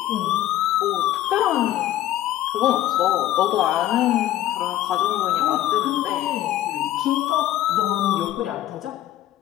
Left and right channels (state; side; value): quieter; right; 13.7 dB